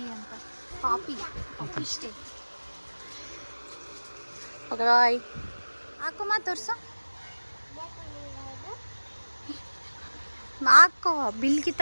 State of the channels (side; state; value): both; inverted; correlation -1.00